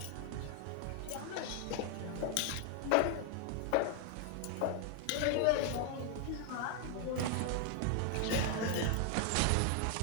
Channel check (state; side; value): different; both; correlation 0.00